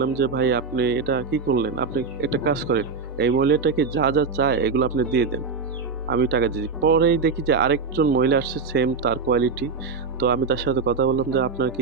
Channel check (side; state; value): left; quieter; 4.9 dB